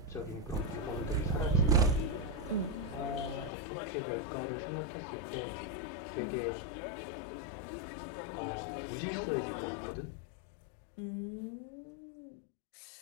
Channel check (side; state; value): right; drops out; at 3.5 s